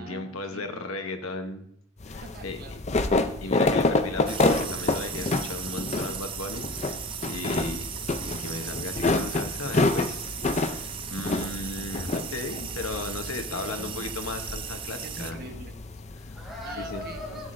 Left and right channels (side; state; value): both; normal; correlation 0.36